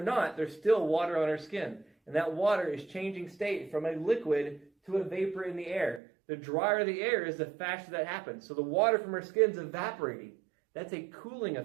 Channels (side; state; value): left; drops out; at 6.0 s